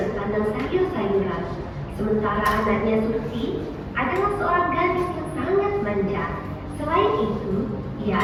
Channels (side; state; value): both; identical; correlation 1.00